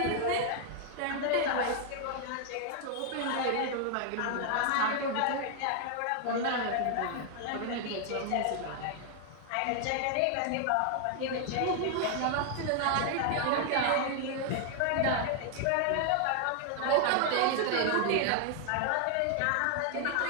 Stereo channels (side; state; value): both; different; correlation 0.00